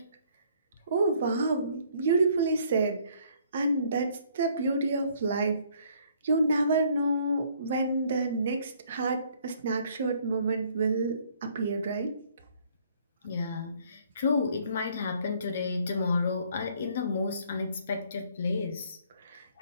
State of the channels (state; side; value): inverted; both; correlation -0.62